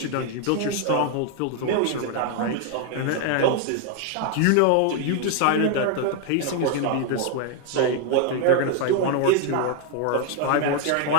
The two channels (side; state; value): both; different; correlation 0.00